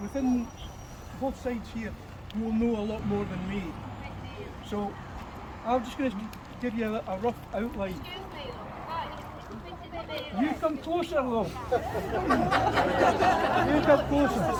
both sides here who will know a lot more than me. So I'm just going to give you a rough outline. You come closer, though. You come closer.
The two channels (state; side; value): identical; both; correlation 1.00